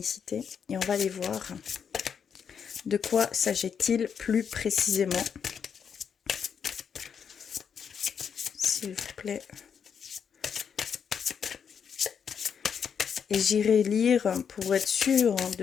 et on va aller voir de quoi s'agit-il plus précisément. S'il vous plaît. Et j'irai lire pour être sûr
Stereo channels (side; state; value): right; quieter; 7.2 dB